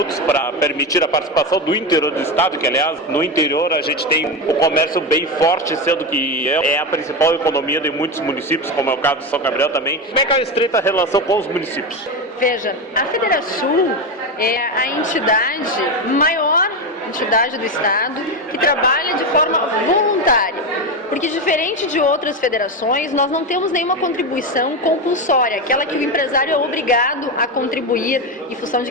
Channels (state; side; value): normal; both; correlation 0.15